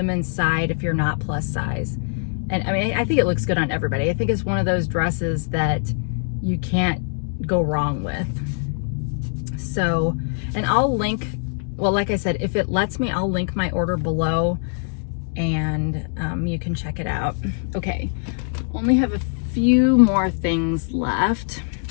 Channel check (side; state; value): right; silent; 64 dB below the other